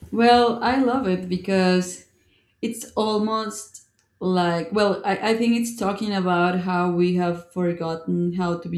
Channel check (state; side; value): identical; both; correlation 1.00